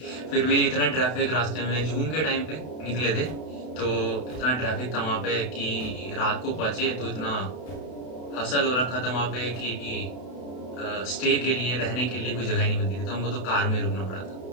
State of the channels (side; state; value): right; late; 32 ms